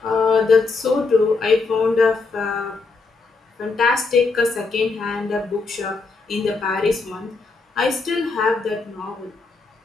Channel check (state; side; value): quieter; right; 4.1 dB